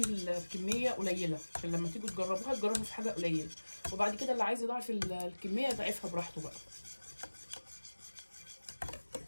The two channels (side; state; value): both; inverted; correlation -1.00